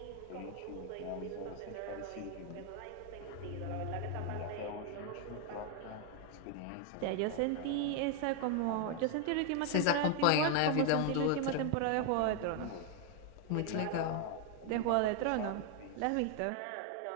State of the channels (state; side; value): different; both; correlation 0.00